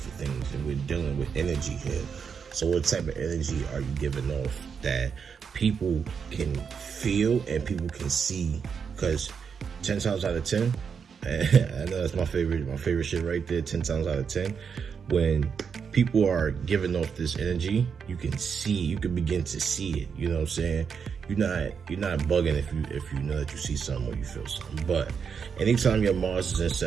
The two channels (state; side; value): quieter; left; 6.4 dB